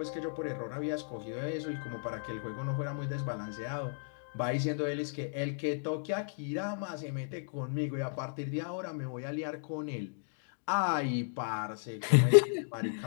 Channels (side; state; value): right; silent; digital silence